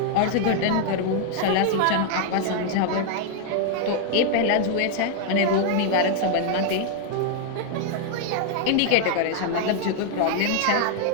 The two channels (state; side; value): different; both; correlation 0.00